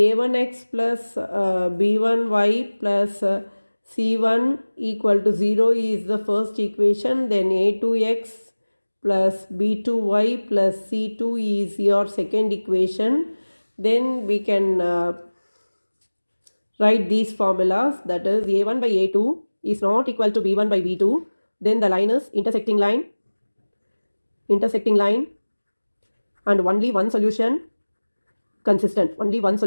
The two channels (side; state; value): both; inverted; correlation -1.00